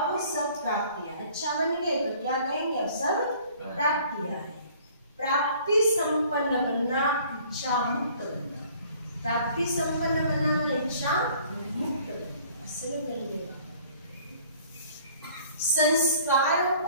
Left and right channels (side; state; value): both; inverted; correlation -0.54